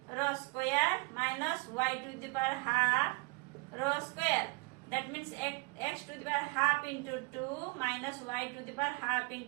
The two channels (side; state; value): left; quieter; 28.3 dB